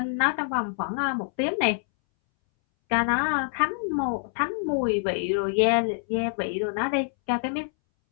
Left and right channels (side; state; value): right; silent; 61 dB below the other